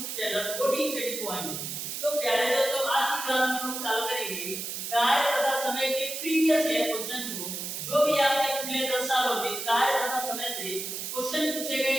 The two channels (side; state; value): right; noise; hiss, 5 dB below the sound